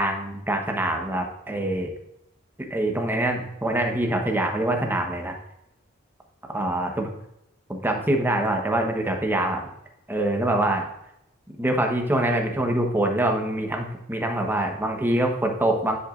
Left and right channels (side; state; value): both; normal; correlation 0.61